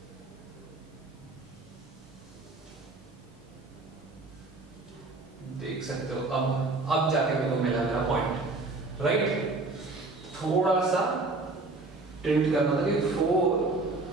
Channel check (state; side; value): quieter; left; 3.4 dB